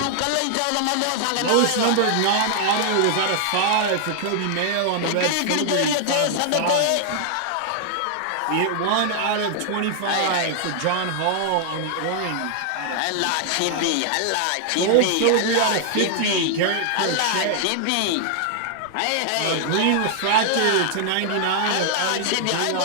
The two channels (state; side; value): different; both; correlation -0.01